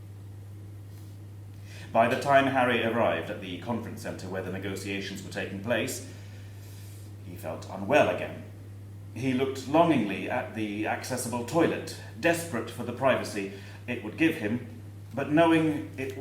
By the time Harry arrived at the conference centre where the negotiations were taking place, he felt unwell again. He looked longingly at the accessible toilet, desperate for the privacy it would give him, but knowing it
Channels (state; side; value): identical; both; correlation 1.00